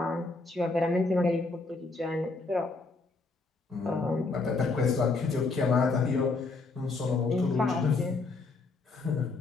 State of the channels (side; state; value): right; quieter; 3.7 dB